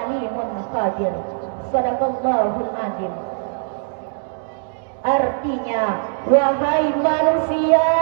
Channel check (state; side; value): silent; left; digital silence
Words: alimun khabir. Shadaqallahul azim. Artinya, wahai manusia,